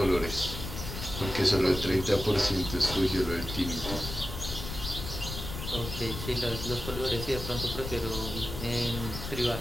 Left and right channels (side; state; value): left; noise; rumble, 8 dB below the sound